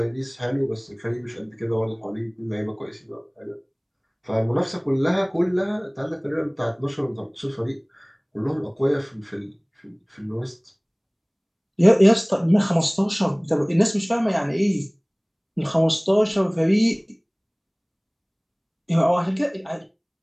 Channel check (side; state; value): both; identical; correlation 1.00